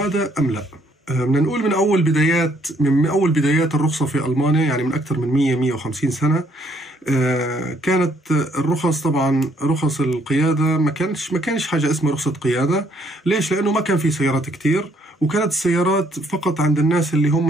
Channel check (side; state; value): both; normal; correlation 0.67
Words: أم لا؟ بدنا نقول من أول بدايات الرخصة في ألمانيا، يعني من أكثر من 150 سنة، كانت الرخص طبعا رخص القيادة ما كانش حاجة اسمها رخصة قيادة. ليش؟ لأنه ما كان في سيارات كتير، وكانت السيارات فقط عند الناس اللي هم